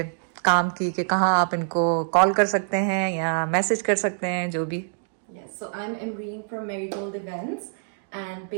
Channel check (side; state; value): left; silent; digital silence